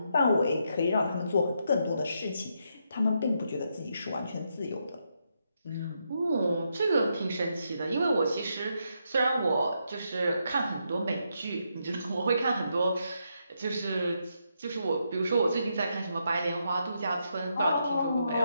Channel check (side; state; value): both; inverted; correlation -0.80